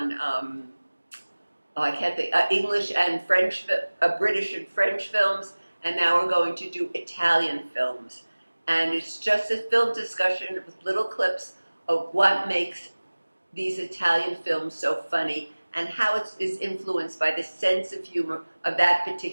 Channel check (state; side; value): inverted; both; correlation -1.00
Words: English and French, British and French films. And now we're going to do Italian films. And it's just a film discussion with little clips of what makes these Italian films so funny and how it is influenced by the sense of humor of that